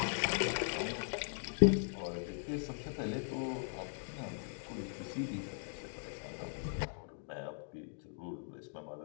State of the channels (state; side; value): silent; right; digital silence